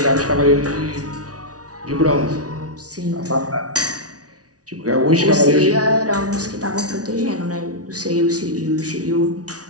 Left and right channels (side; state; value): left; late; 0.68 ms